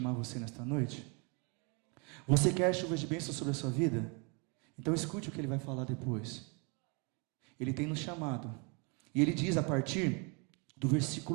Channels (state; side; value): quieter; left; 33.2 dB